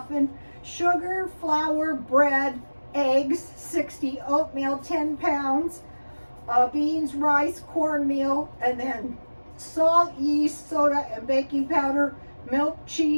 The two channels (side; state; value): both; inverted; correlation -1.00